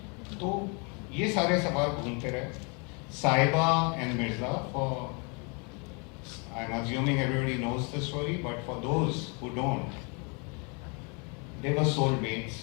तो ये सारे सवाल घूमते रहे. Sahiba and Mirza, for I'm assuming everybody knows the story, but for those who don't, they were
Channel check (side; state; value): right; quieter; 33.9 dB